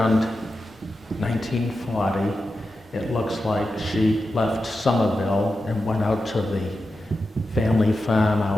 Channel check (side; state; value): both; normal; correlation 0.90